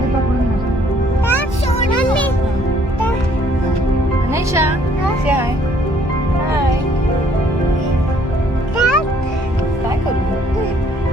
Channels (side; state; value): both; normal; correlation 0.63